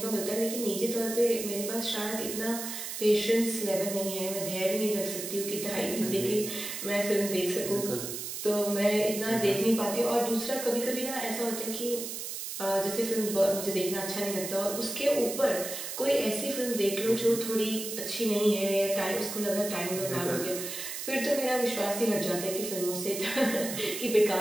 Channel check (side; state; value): right; noise; hiss, 6 dB below the sound